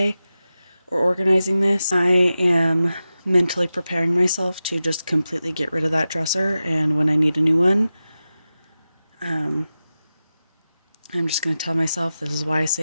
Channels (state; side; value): inverted; both; correlation -0.93